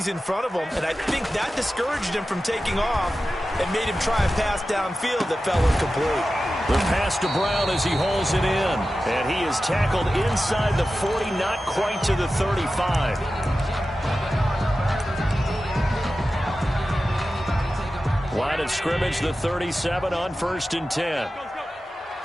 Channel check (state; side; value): normal; both; correlation 0.94